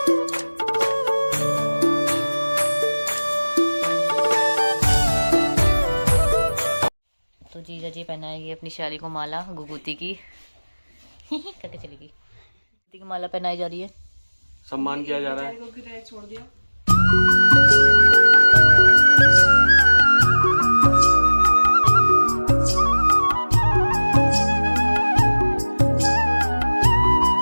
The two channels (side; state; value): both; inverted; correlation -1.00